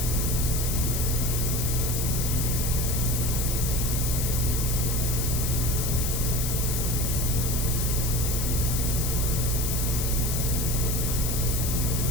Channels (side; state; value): left; noise; hiss, 2 dB below the sound